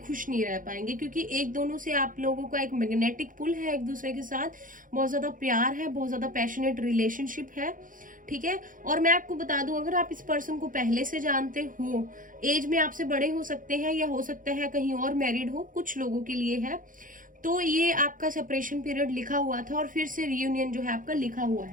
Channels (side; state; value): left; late; 0.39 ms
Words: नहीं रह पाएंगे। क्योंकि एक दोनों से आप लोगों का एक मैग्नेटिक पुल है एक दूसरे के साथ, बहुत ज्यादा प्यार है, बहुत ज्यादा पैशनेट रिलेशनशिप है, ठीक है। और मैं आपको बता दूं, अगर आप इस पर्सन को पहले से जानते हो, एज में आपसे बड़े हो सकते हैं या हो सकता है कहीं और मैरिड हो, कुछ लोगों के लिए है, तो ये आपका सेपरेशन पीरियड लिखा हुआ था और फिर से रियूनियन जो है आपका लिखा हुआ